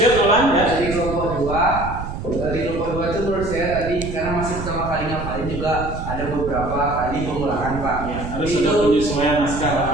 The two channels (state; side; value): noise; right; rumble, 7 dB below the sound